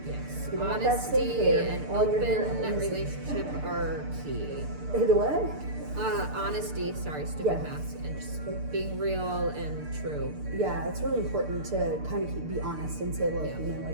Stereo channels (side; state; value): left; late; 6.7 ms